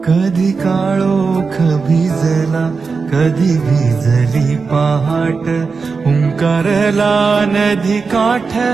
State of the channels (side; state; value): left; quieter; 4.8 dB